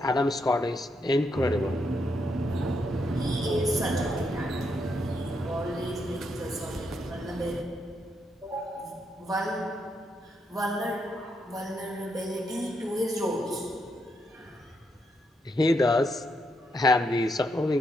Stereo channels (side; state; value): both; normal; correlation 0.79